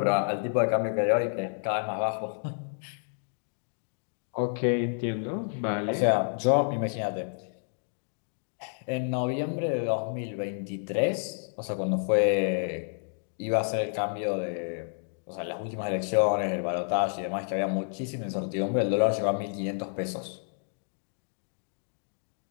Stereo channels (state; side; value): silent; right; digital silence